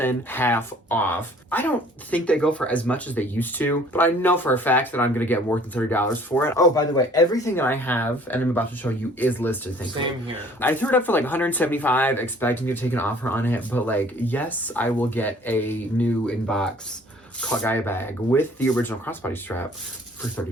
half off. I don't think they go for as much as they used to, but I know for a fact that I'm going to get more than $30 for it. Oh, by the way, everything that I have, and I'm about to show you, is listed, thankfully. Same here. I threw it up for like $175, expecting to take an offer on it, but like, yes, I will get a new inbox Cult Gaia bag with the original crossbody strap for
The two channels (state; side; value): normal; both; correlation 0.54